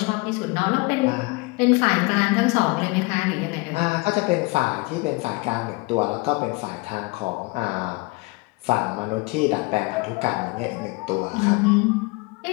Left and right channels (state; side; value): quieter; right; 26.0 dB